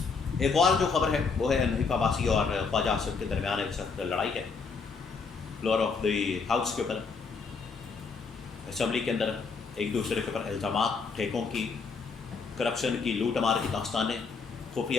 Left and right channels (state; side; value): quieter; right; 5.0 dB